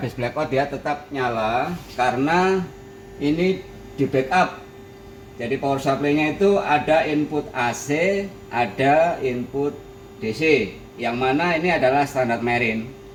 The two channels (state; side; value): identical; both; correlation 1.00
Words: blackout dia tetap nyala karena ini di backup. Jadi power supply-nya itu ada input AC, ada input DC, yang mana ini adalah standar marine.